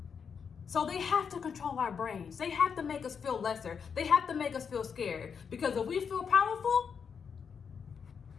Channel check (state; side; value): quieter; right; 6.5 dB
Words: So they have to control our brains. They have to make us feel lesser. They have to make us feel scared, because if we feel powerful,